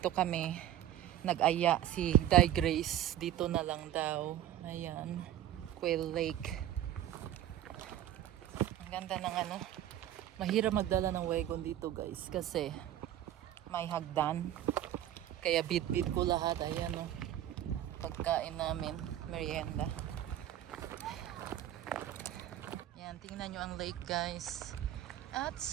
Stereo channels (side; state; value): left; quieter; 12.1 dB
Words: kami nag-aya si Di Grace, dito na lang daw. Ayan, Quail Lake. Ang ganda ng ano, mahirap magdala ng wagon dito guys kasi may hagdan. Kaya bit-bit ko lahat. Ayan o. Pagkain namin. Merienda. Ayan. Tingnan nyo ang lake guys. At